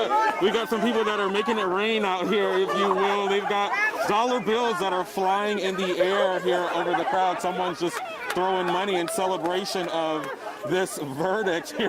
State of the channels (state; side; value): identical; both; correlation 1.00